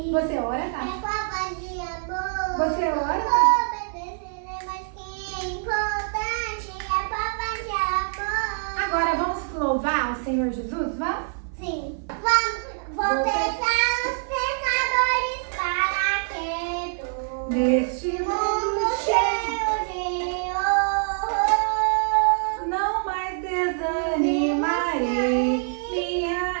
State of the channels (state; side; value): silent; left; 57 dB below the other